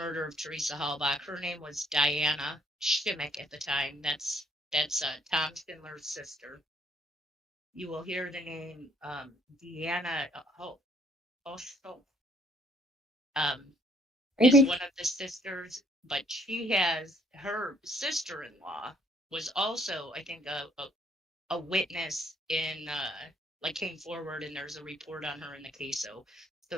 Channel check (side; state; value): both; normal; correlation 0.65